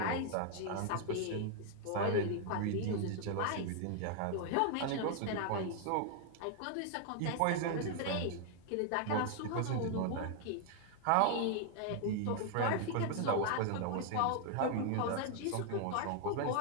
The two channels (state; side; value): different; both; correlation 0.00